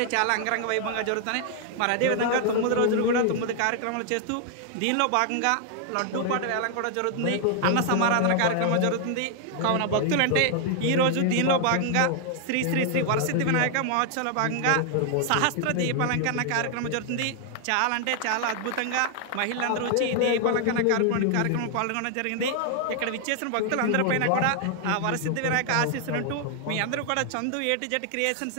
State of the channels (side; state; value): both; different; correlation 0.00